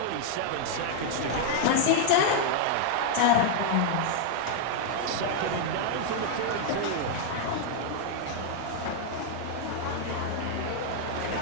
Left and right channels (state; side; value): different; both; correlation -0.01